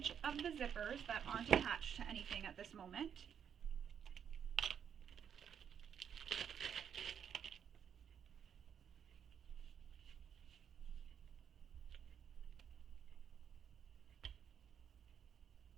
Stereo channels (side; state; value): left; quieter; 8.1 dB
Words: of the zippers that aren't attached to anything at this moment.